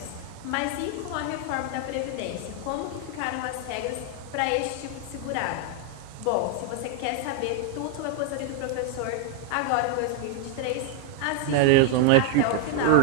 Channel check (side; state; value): both; different; correlation 0.00